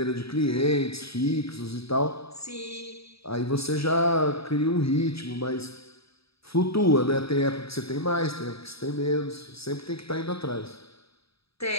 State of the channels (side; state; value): right; late; 0.77 ms